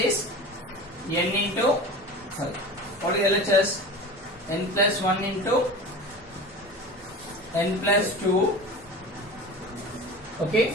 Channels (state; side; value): normal; both; correlation 0.34